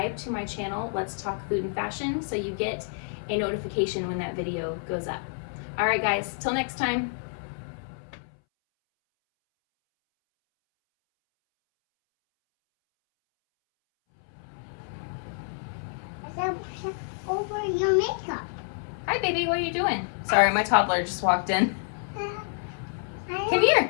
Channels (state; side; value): silent; right; 59 dB below the other